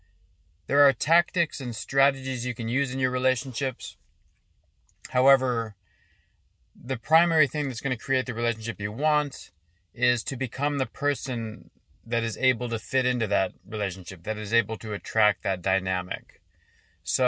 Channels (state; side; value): identical; both; correlation 1.00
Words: There are tactics and strategies you can use in your relationships. However, the primary thing that's going to create the relationship you want is to become the person that is able to fit into that relationship, that is able to attract that dynamic.